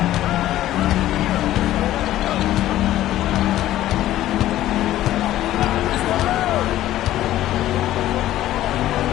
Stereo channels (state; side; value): quieter; right; 14.0 dB